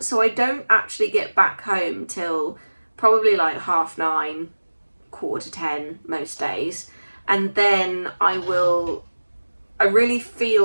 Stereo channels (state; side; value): inverted; both; correlation -1.00